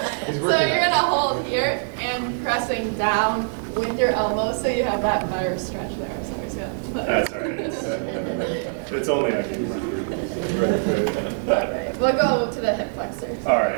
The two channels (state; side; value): silent; left; digital silence